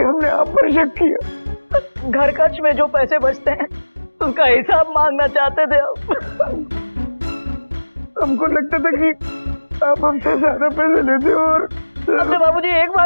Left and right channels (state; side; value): inverted; both; correlation -1.00